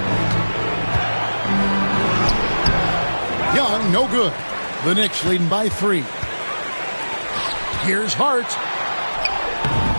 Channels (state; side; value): inverted; both; correlation -1.00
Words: Young, no good. The Knicks leading by 3. Here's Hart.